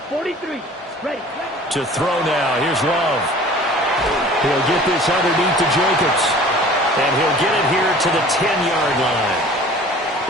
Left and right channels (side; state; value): both; normal; correlation 0.46